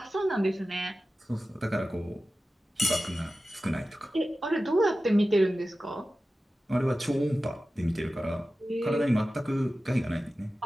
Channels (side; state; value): both; normal; correlation 0.95